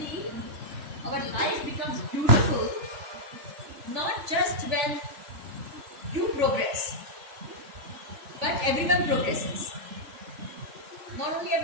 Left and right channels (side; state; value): left; late; 3.4 ms